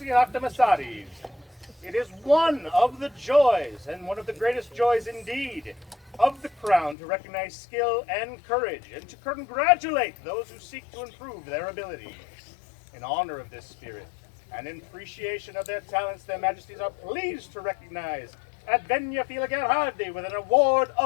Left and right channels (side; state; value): right; drops out; at 7.0 s